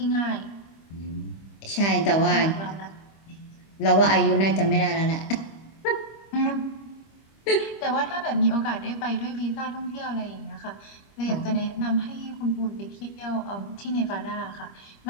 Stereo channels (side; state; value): right; late; 25 ms